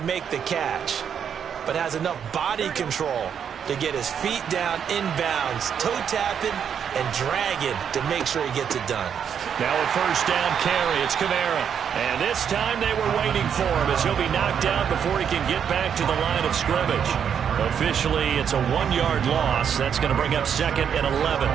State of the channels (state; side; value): quieter; left; 8.0 dB